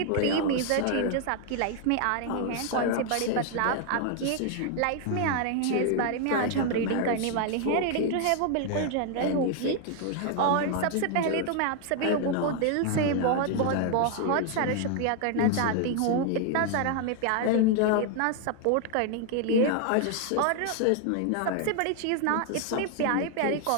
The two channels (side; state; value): both; different; correlation 0.00